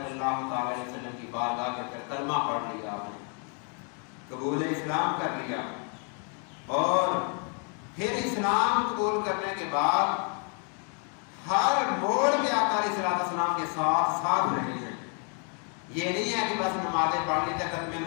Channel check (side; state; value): right; quieter; 38.6 dB